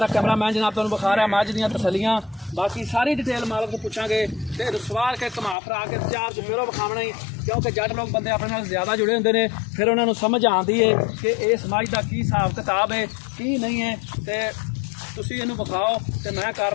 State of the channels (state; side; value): drops out; right; at 5.6 s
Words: कैमरामैन जनाब तुहानूं विखा रहा मझ दियां तसलियां, बाकी सारी डिटेल मालक तो पुछांगे। ते सवार के घुमा फिरा के चार चफेरों विखावना ही, क्योंकि जट लोग बंदे अपने नाल ज़्यादा जुड़े होंदे ने, फिर उन्होंने समझ आती है कि इस मझ का की हिसाब किताब है की नहीं है। तो तुसीं इहनूं विखाओ ते मैं